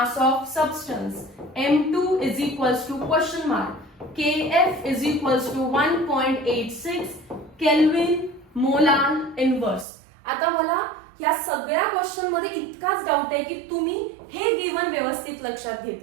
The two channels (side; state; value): left; drops out; at 9.9 s